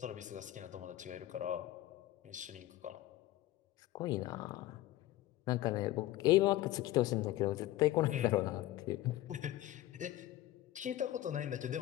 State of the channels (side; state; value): right; quieter; 15.1 dB